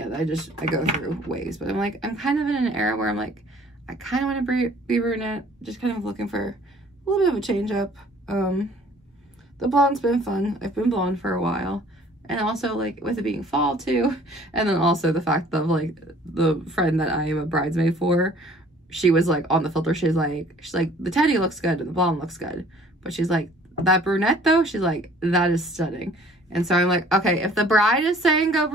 I go through waves, but I'm like, I'm kind of in an era where I'm like, I kind of want to be brunette, just kind of looking for a little bit of a change up. The blonde's been fun. I've been blonde for a while. And also, like, with it being fall, too. And then also the fact of, like, the friend that I am a bridesmaid for, she was, like, on the filter. She's like, the teddy looks good and the blonde looks good. But she's like, that brunette, though, she's like, that is stunning. And so I'm like, okay, if the bride is saying go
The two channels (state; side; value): normal; both; correlation 0.54